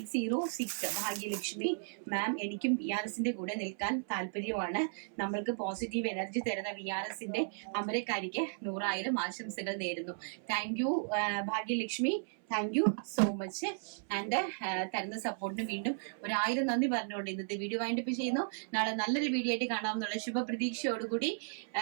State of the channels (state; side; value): silent; left; 54 dB below the other